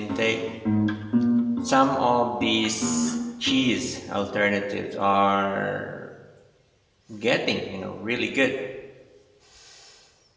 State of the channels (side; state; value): both; identical; correlation 1.00